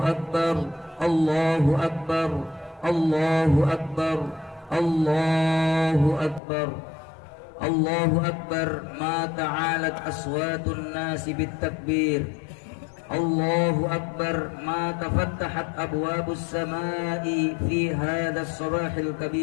Allahu Akbar, Allahu Akbar, Allahu Akbar, Allahu Akbar. Ma ta'alat aswatun nasi bit-takbir. Allahu Akbar. Ma tafattahat abwabus samai fi hadha as-sabahil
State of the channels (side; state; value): right; drops out; at 6.4 s